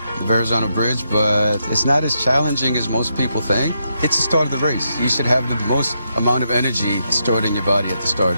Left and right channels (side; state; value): both; inverted; correlation -0.81